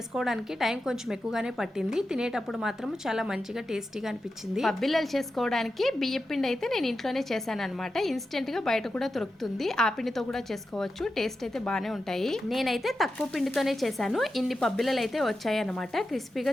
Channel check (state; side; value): normal; both; correlation 0.90